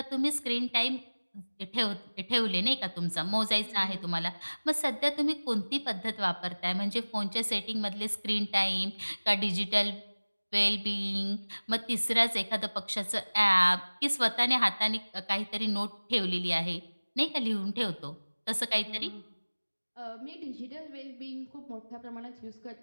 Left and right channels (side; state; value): both; inverted; correlation -1.00